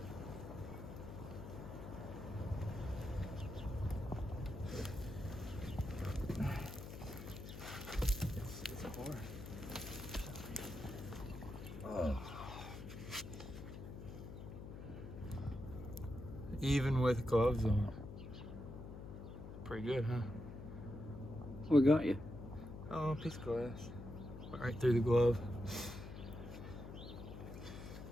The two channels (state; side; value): noise; left; hum, 10 dB below the sound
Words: It's hard. Oh. Even with gloves on. Pretty good, huh? What got you? Oh, a piece of glass. Went right through the glove.